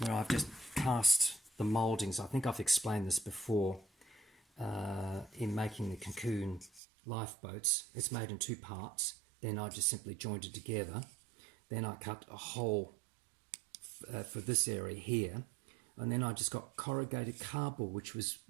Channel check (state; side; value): drops out; left; at 6.8 s